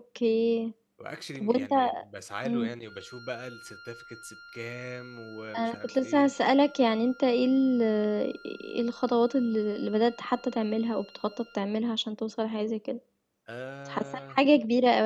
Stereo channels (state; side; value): identical; both; correlation 1.00